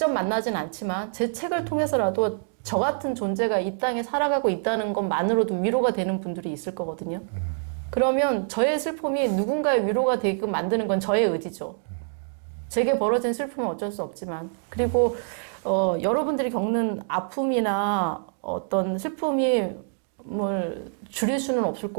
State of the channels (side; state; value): left; silent; digital silence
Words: 만나진 않지만 제 책을 통해서라도 저 같은 존재가 이 땅에 살아가고 있다는 것만으로도 위로가 되는 분들이 있을 거거든요. 그러면 저의 슬픔이 누군가의 위로가 되게끔 만드는 건 저의 의지죠. 제게 벌어진 슬픔은 어쩔 수 없지만. 그리고 여러분들이 겪는 아픔이나 어떤 슬픔이 뭘 줄일 수는 없을